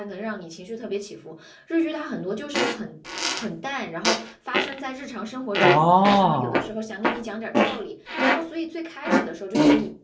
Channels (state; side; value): identical; both; correlation 1.00